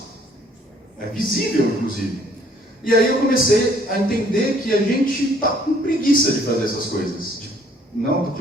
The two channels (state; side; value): normal; both; correlation 0.61